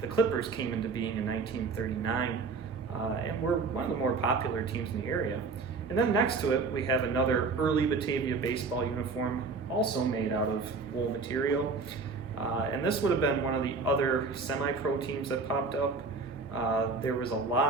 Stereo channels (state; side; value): quieter; left; 4.4 dB